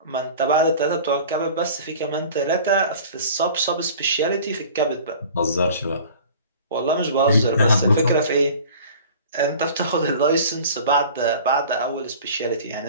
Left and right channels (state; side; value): inverted; both; correlation -0.43